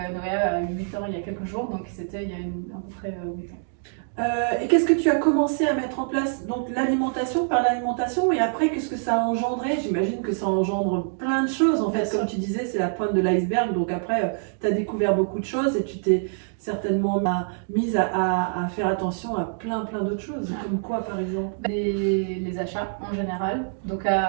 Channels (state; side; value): silent; left; digital silence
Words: à 8 ans il y a quelques jours, donc c'était il y a à peu près 8 ans. Et qu'est-ce que tu as commencé à mettre en place? Donc l'alimentation, par l'alimentation, et après, qu'est-ce que ça a engendré? J'imagine que ça engendre plein de choses, en fait. Comme tu disais, c'est la pointe de l'iceberg. Donc après, tu as découvert beaucoup de choses et tu t'es certainement mise à faire attention à plein d'autres choses. Comme quoi, par exemple? Les achats en général. Donc